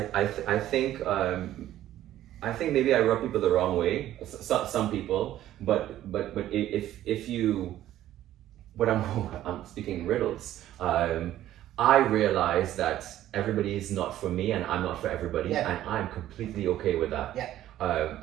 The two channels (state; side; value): quieter; left; 13.1 dB